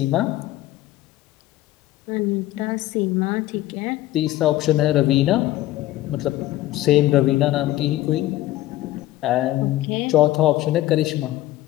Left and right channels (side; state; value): right; quieter; 15.4 dB